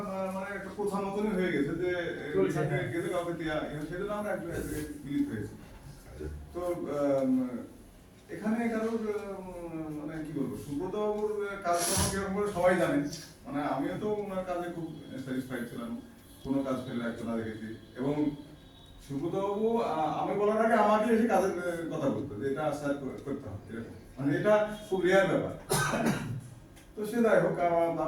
মানে একটা প্রথা মতনই হয়ে গেছে যে গেলে কাউকে দেওয়া, সেজন্য আমরা একটা মিলিত হয়েছি। তো এখানে কারোর মানে কি বলবো, সুব্রত বাবুর কাজকর্ম কিরকম করে সবাই জানে, মানে আমিও তো ওনার কাজে খুব স্যাটিসফাইড ছিলাম, কোনো কাজ ফেলে রাখতে না দেখেছি। এবং সুব্রত বাবু আমি বলার আগে আমাকে এসে কাজের কথা বলতো যে এটা স্যার করতে হবে, এরকম, মানে এটা খুব রেয়ার ব্যাপার। তো সে যাই হোক,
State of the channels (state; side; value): identical; both; correlation 1.00